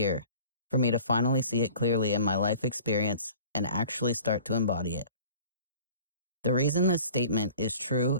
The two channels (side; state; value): both; inverted; correlation -0.46